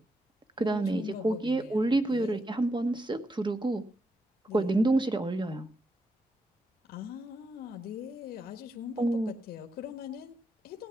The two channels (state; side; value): normal; both; correlation 0.83